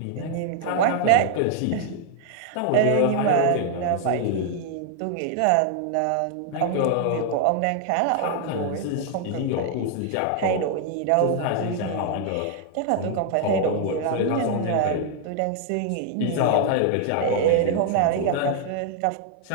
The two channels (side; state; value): both; different; correlation 0.00